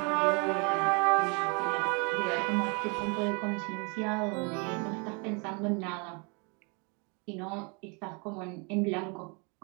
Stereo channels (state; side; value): quieter; left; 33.1 dB